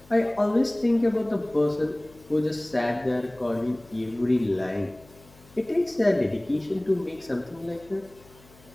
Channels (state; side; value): noise; left; hum, 25 dB below the sound